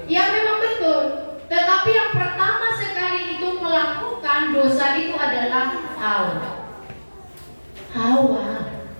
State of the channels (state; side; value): inverted; both; correlation -1.00